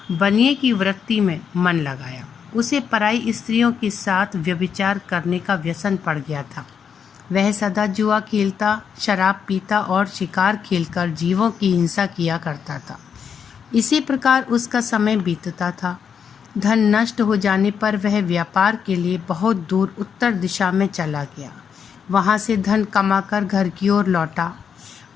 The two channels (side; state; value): right; quieter; 7.2 dB